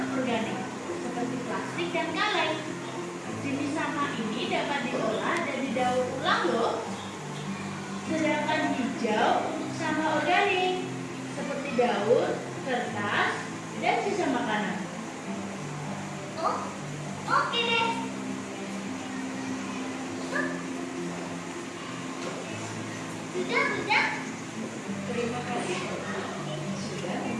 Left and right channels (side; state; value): both; identical; correlation 1.00